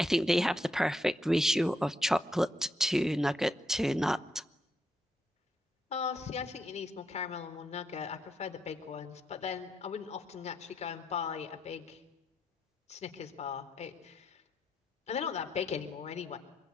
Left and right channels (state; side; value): normal; both; correlation 0.79